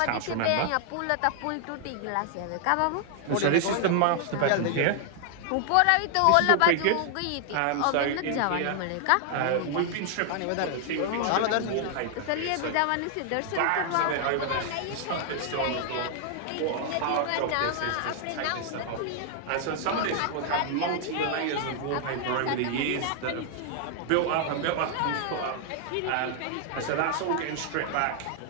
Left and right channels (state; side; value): different; both; correlation 0.00